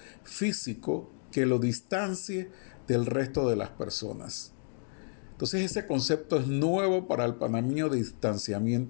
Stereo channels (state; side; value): silent; right; 57 dB below the other